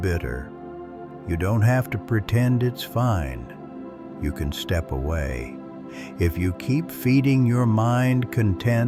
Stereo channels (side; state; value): both; identical; correlation 1.00